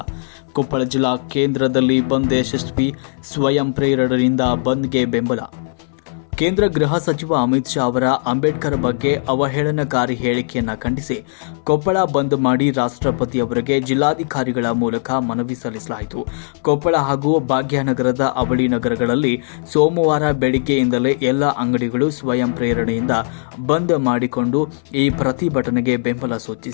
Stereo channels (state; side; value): silent; right; 62 dB below the other